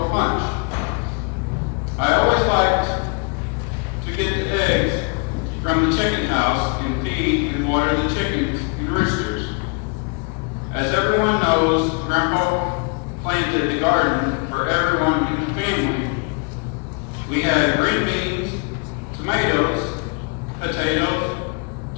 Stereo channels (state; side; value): quieter; right; 34.3 dB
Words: punch. I always liked to get the eggs from the chicken house and feed and water the chickens and roosters. As everyone knows, Grandpa planted the garden for everyone in the family. We had green beans, tomatoes, potatoes,